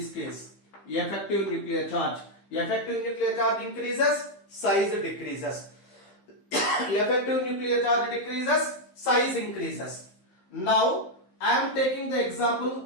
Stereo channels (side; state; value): right; late; 15 ms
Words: case. Effective nuclear charge. Effective nuclear charge increases, size decreases. Effective nuclear charge decreases, size increases. Now I am taking the example